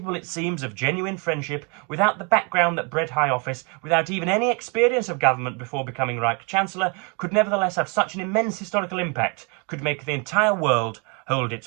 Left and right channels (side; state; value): left; quieter; 33.4 dB